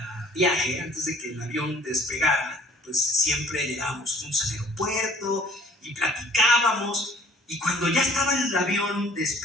viaje, antes de que el avión despegara, pues siempre llegábamos juntos al aeropuerto y platicábamos. Y cuando ya estaba el avión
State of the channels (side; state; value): both; normal; correlation 0.54